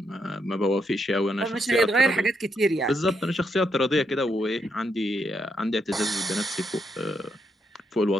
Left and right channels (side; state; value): both; normal; correlation 0.79